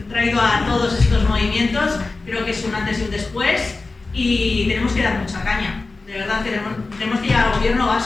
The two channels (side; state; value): right; quieter; 3.6 dB